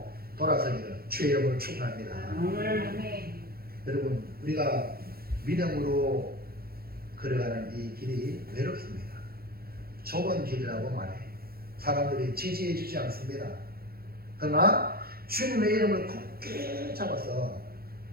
돌아서기를 주의 이름으로 축원합니다. 여러분, 우리가 믿음으로 걸어가는 이 길이 외롭습니다. 좁은 길이라고 말해. 사람들이 지지해 주지 않습니다. 그러나 주님의 이름을 굳게 잡아서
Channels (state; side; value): late; left; 0.44 ms